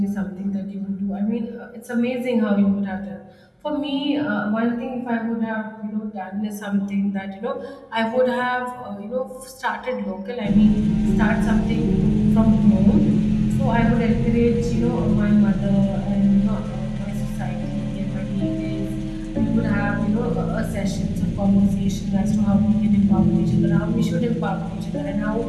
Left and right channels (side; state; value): both; identical; correlation 1.00